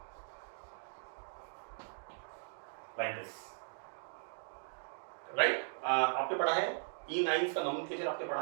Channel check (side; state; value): left; silent; digital silence